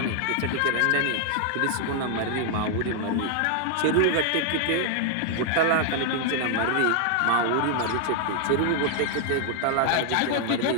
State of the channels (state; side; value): different; both; correlation 0.00